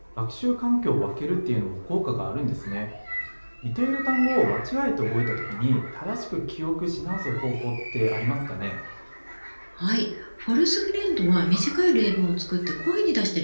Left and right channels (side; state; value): both; inverted; correlation -1.00